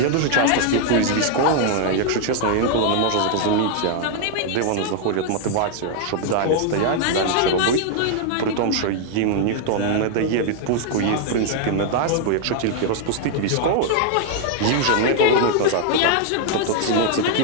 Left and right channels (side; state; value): both; different; correlation 0.00